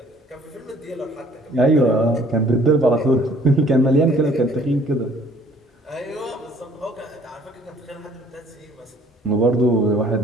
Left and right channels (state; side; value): normal; both; correlation 0.57